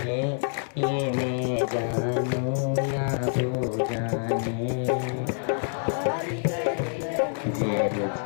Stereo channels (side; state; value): right; silent; digital silence